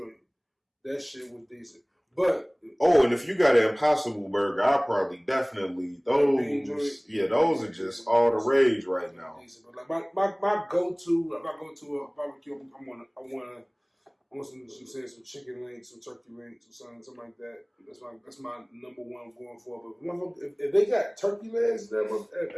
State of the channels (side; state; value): both; identical; correlation 1.00